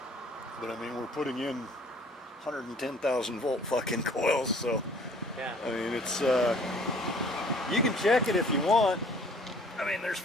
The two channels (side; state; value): both; normal; correlation 0.55